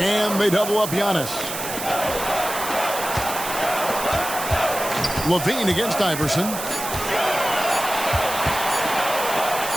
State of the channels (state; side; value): noise; right; hiss, 7 dB below the sound